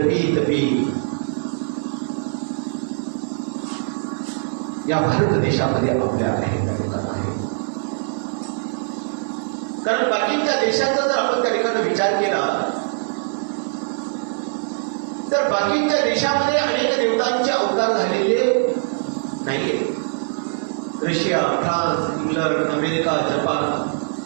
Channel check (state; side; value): silent; left; digital silence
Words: तपी या भारत देशामध्ये आपल्या आहे त्या ठिकाणी आहे. कारण बाकीच्या देशाचा जर आपण त्या ठिकाणी विचार केला तर बाकीच्या देशामध्ये अनेक देवतांचे अवतार झालेले नाहीये. Russia, France, England, America, Japan,